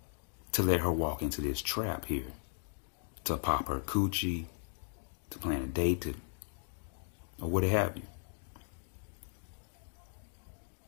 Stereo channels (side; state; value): right; silent; digital silence